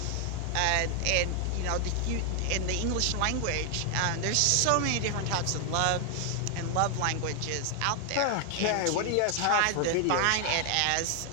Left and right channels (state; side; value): different; both; correlation 0.00